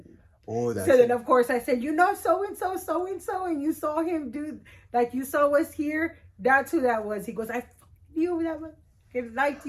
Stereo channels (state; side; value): identical; both; correlation 1.00